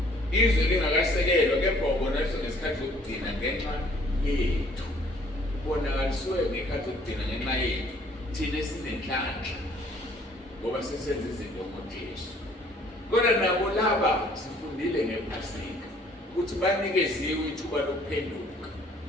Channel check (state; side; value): normal; both; correlation 0.58